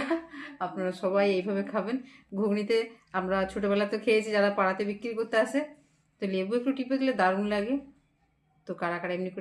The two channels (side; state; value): both; identical; correlation 1.00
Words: আপনারা সবাই এইভাবে খাবেন। ঘুগনিতে আমরা ছোটোবেলাতে খেয়েছি, যারা পাড়াতে বিক্রি করতে আসে, তো লেবু একটু টিপে দিলে দারুণ লাগে। তো কারা কারা এমনি